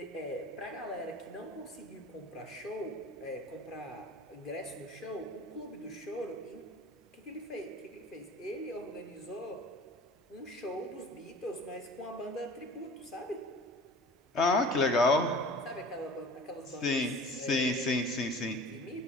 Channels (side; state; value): both; normal; correlation 0.42